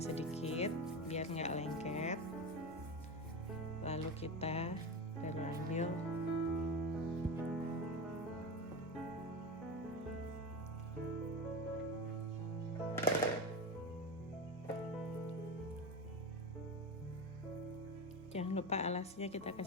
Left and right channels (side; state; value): both; normal; correlation 0.22